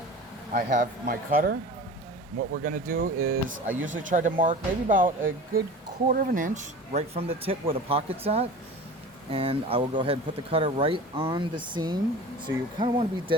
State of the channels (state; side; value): normal; both; correlation 0.37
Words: I have my cutter. What we're gonna do is I usually try to mark maybe about a good quarter of an inch right from the tip where the pocket's at. And I will go ahead and put the cutter right on the seam. So you kind of want to be